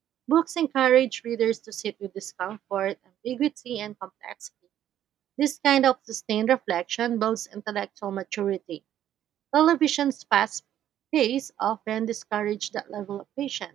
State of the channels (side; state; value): left; quieter; 11.3 dB